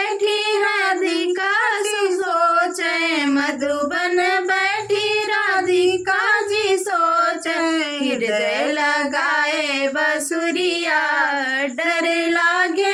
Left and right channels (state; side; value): identical; both; correlation 1.00